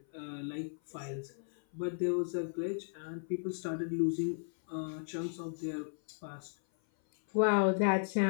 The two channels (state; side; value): silent; right; 54 dB below the other